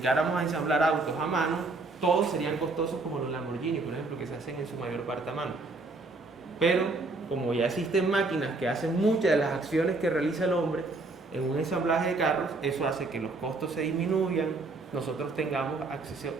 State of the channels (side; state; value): left; quieter; 3.4 dB